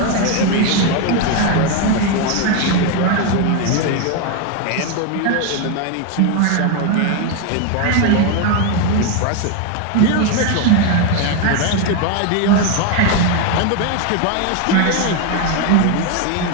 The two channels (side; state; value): both; different; correlation 0.02